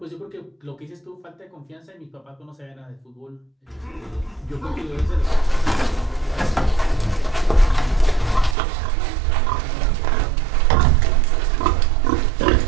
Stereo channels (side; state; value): left; drops out; at 8.6 s